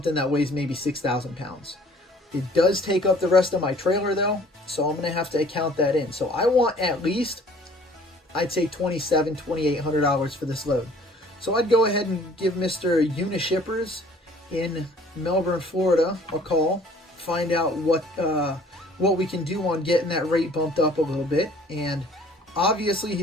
that weighs maybe 6,000 pounds. It does take up the rest of my trailer though, so I'm going to have to account that in. So I want at least, I'd say $2,700, $2,800 for this load. So I'd go ahead and give Mr. Unishippers in Melbourne, Florida a call, find out what we can do on getting that rate bumped up a little bit. And obviously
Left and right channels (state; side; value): normal; both; correlation 0.54